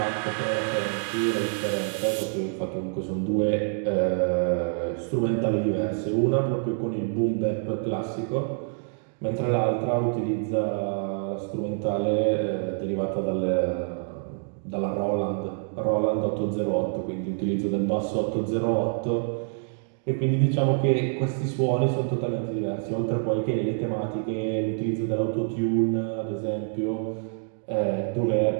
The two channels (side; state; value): left; silent; 59 dB below the other